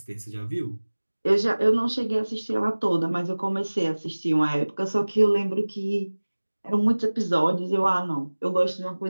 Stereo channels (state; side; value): inverted; both; correlation -1.00